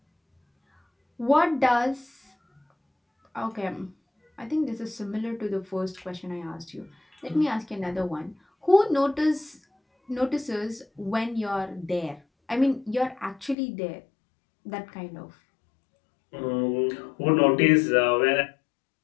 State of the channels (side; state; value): right; drops out; at 13.6 s